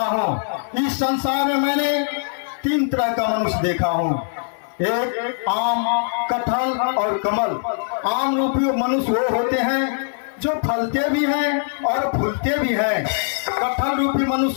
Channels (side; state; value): right; silent; 58 dB below the other